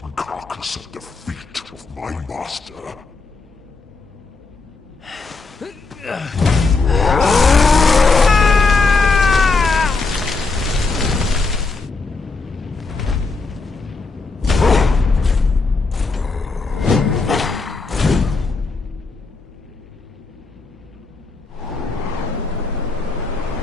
carcass at the feet of my master.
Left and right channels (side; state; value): right; quieter; 4.0 dB